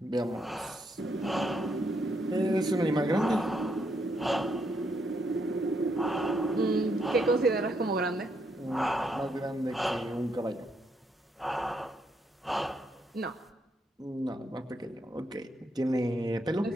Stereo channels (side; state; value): both; normal; correlation 0.76